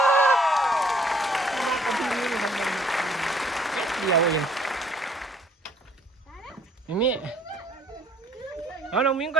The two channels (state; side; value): normal; both; correlation 0.60